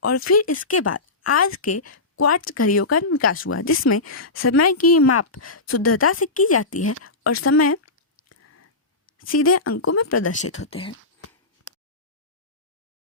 और फिर इसके बाद आज के क्वार्ट्ज घड़ियों का विकास हुआ, जिसमें समय की माप शुद्धता से की जाती है और समय सीधे अंकों में प्रदर्शित होते हैं।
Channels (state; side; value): quieter; right; 3.3 dB